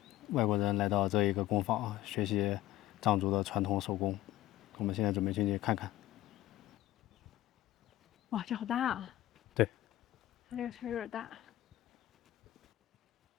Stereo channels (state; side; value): quieter; right; 15.1 dB